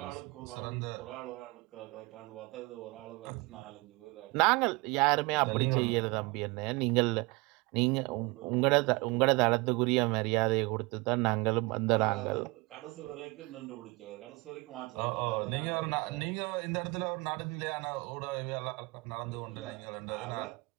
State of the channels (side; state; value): left; quieter; 25.7 dB